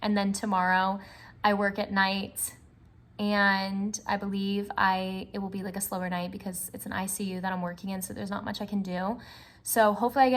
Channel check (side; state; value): both; identical; correlation 1.00